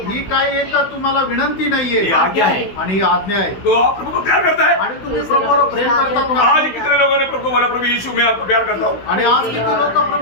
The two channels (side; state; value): right; late; 16 ms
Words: काही एक तुम्हाला विनंती नाहीये, ये आज्ञा है. आणि ही आज्ञा आहे. तो आप प्रभु को प्यार करता है? आणि तुम्ही प्रभूवर प्रेम करतात ना? आज कितने लोगों ने प्रभु को बोला, प्रभु यीशु मैं आपको प्यार करता हूँ. आणि आज किती लोक